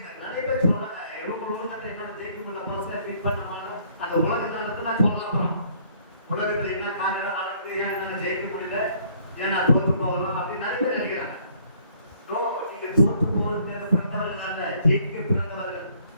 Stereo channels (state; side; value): inverted; both; correlation -0.62